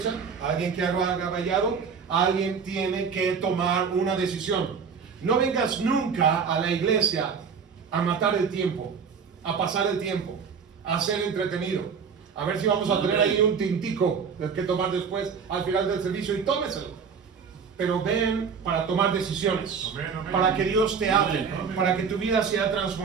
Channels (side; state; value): left; quieter; 6.1 dB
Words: ¿Alguien que haga vallado? alguien tiene que tomar una decisión. No vengas nunca a la iglesia a matar el tiempo, a pasar el tiempo, a ser entretenido, a ver si vamos a tener ahí un tintico que tomar después al final del servicio, y tómeselo. Pero ven para tomar decisiones, para que Dios te hable, para que tu vida sea